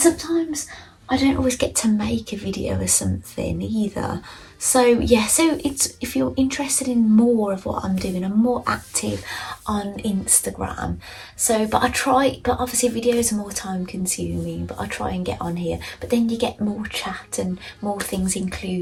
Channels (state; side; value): identical; both; correlation 1.00